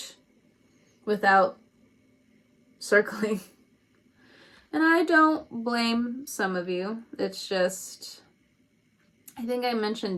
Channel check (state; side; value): identical; both; correlation 1.00